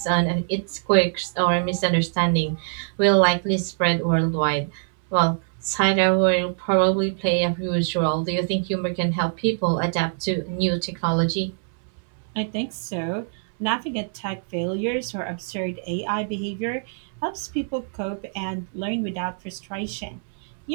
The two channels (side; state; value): left; silent; 63 dB below the other